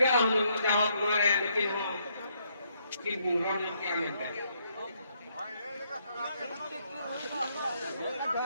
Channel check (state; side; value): inverted; both; correlation -0.73